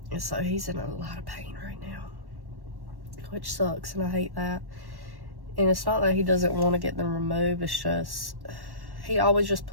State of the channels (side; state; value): left; late; 1.1 ms